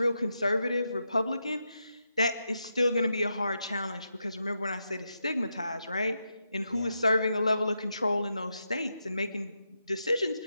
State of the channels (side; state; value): both; inverted; correlation -0.85